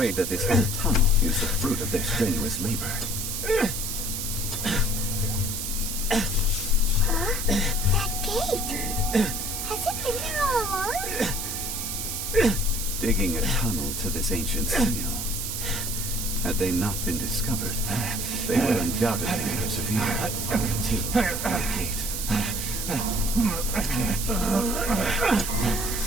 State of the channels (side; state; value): right; noise; hiss, 3 dB below the sound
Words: that this whole tunnel is the fruit of their strenuous labor. That gate. Has it been there all along? Digging a tunnel to this ancient seal. Had they not been discovered, they would undoubtedly persevere until the gate.